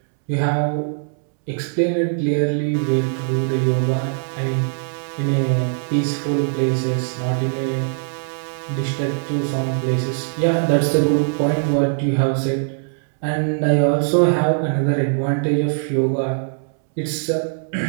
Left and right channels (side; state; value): left; silent; 65 dB below the other